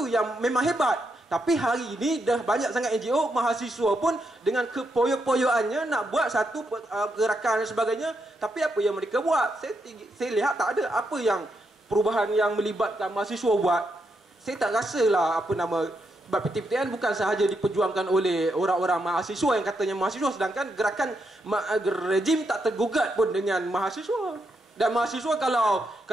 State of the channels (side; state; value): both; normal; correlation 0.81